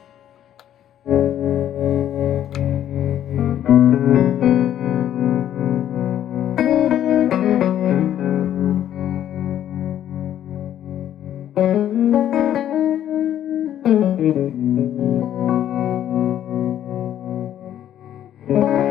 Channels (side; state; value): right; quieter; 11.1 dB